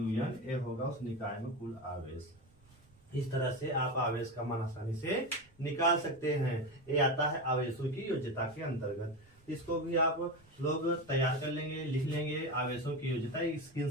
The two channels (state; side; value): noise; right; rumble, 28 dB below the sound